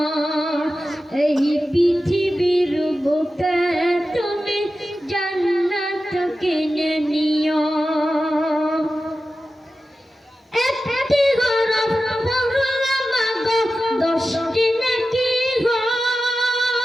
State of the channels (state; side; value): normal; both; correlation 0.93